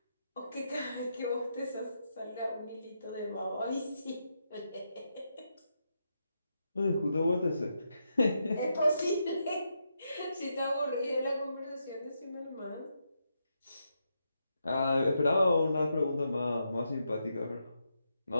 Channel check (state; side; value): inverted; both; correlation -0.83